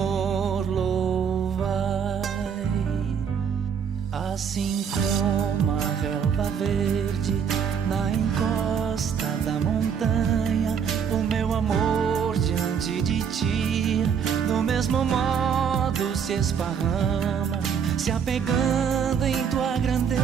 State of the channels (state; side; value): quieter; left; 7.2 dB